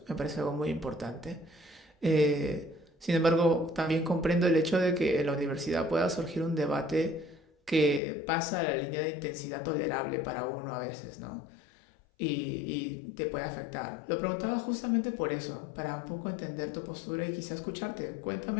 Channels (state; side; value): drops out; right; at 8.0 s